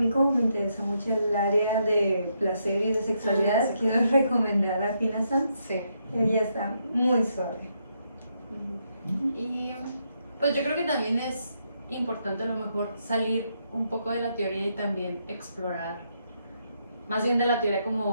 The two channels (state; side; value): inverted; both; correlation -0.78